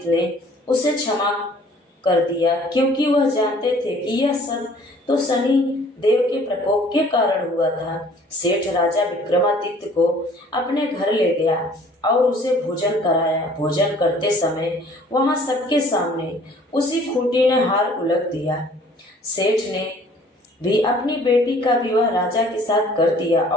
ने उसे क्षमा कर दिया, क्योंकि वह जानते थे कि यह सब तो शनि देव के प्रकोप के कारण हुआ था। सेठ राजा विक्रमादित्य को अपने घर ले गया और उसे भोजन कराया। भोजन करते समय वहां सबके सामने उसी खूंटी ने हार उलट दिया। सेठ ने भी अपनी बेटी का विवाह राजा के साथ कर दिया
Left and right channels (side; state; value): both; normal; correlation 0.54